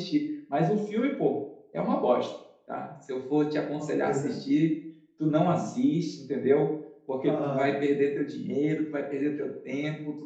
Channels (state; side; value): identical; both; correlation 1.00